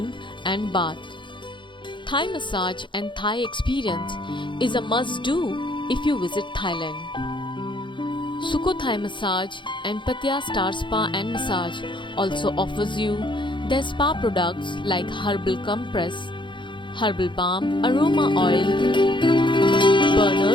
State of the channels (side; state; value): right; late; 0.23 ms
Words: and bath. Thai massage and Thai experience is a must-do if you visit Thailand. Sukho Thai Massage and Pattaya Star Spa and Massage also offers you their spa products like herbal compress, herbal balm, aroma oil,